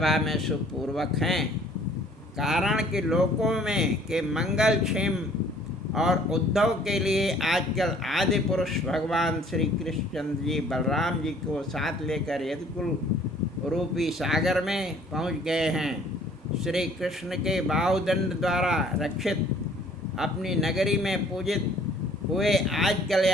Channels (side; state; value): both; normal; correlation 0.56